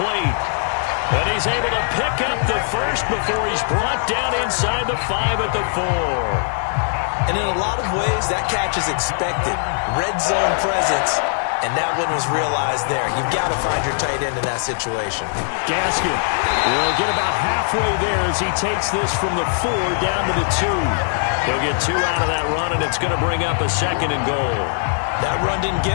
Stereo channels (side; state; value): right; silent; digital silence